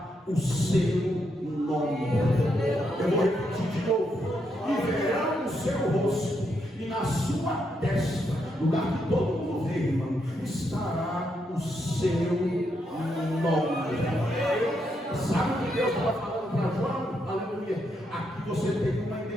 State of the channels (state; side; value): normal; both; correlation 0.79